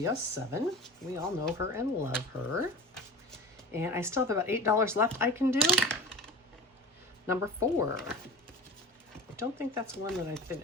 We all know her and love her. And I still have about $8 left I can do. Number 4. I don't think that's one that I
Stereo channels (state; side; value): normal; both; correlation 0.34